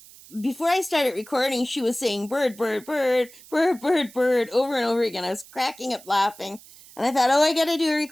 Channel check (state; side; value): noise; right; hiss, 21 dB below the sound